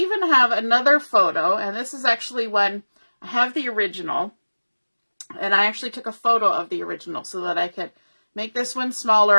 have another photo, and this is actually one, I have the original, and I actually took a photo of the original so that I could make this one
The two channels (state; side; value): inverted; both; correlation -1.00